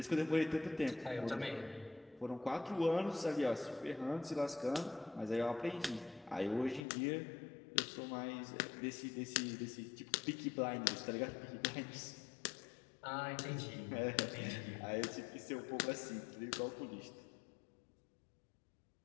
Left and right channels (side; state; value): right; drops out; at 6.9 s